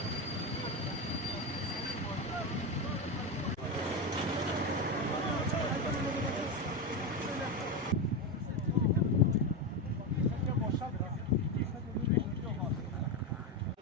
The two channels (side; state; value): both; normal; correlation 0.14